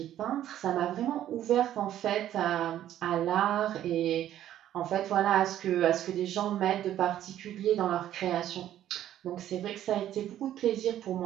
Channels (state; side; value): quieter; left; 11.9 dB